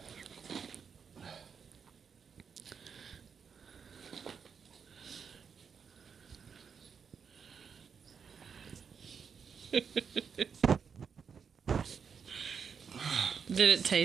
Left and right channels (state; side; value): quieter; left; 6.5 dB